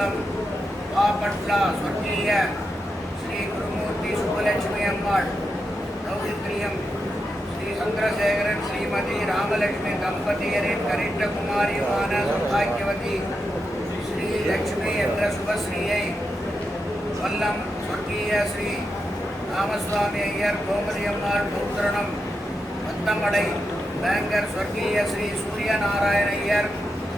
பாப்பட்லா சொர்க்கீய ஸ்ரீ குருமூர்த்தி சுப்பலட்சுமி அம்மாள் தௌஹித்ரியம் ஸ்ரீ சந்திரசேகரன் ஸ்ரீமதி ராமலட்சுமி தம்பதியரின் கரிட்ட குமாரியுமான சௌபாகியவதி ஸ்ரீ லட்சுமி என்ற சுபஸ்ரீயை கொல்லம் சொர்க்கீய ஸ்ரீ ராமசுவாமி ஐயர் கோமதி அம்மாள் பௌத்திரணம் பத்தமடை பேங்கர் சொர்க்கீய ஸ்ரீ சூரியநாராயண ஐயர்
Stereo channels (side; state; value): both; normal; correlation 0.86